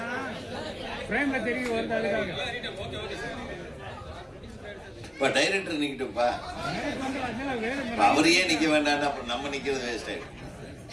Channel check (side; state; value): both; identical; correlation 1.00